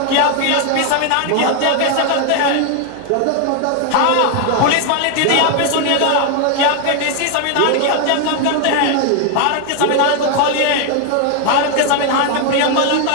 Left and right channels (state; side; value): different; both; correlation 0.00